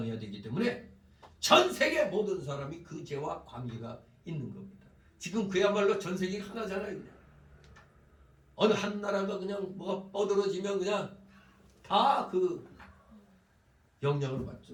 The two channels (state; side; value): identical; both; correlation 1.00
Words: 되기 때문에 전 세계 모든 사람이 그 죄와 관계가 있는 겁니다. 지금 그야말로 전 세계가 하나잖아요. 그냥. 어느 한 나라가 그냥 뭐가 뻗어지면 그냥 다 그 영향을